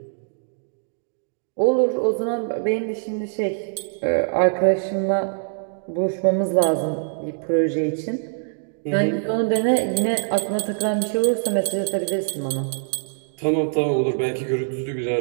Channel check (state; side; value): silent; left; digital silence